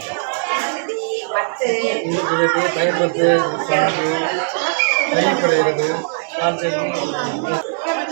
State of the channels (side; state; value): left; silent; digital silence